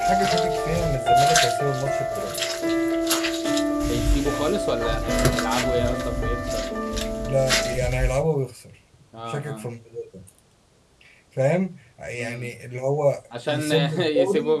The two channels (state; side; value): identical; both; correlation 1.00